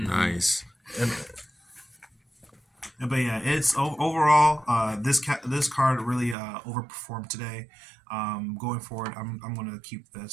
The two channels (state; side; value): drops out; left; at 6.4 s